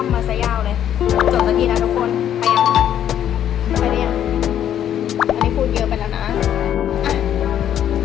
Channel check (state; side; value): quieter; right; 10.3 dB